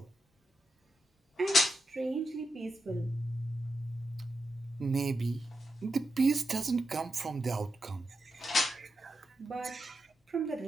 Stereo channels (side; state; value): both; normal; correlation 0.87